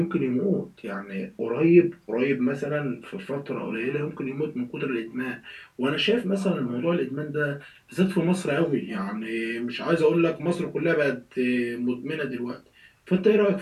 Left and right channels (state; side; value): identical; both; correlation 1.00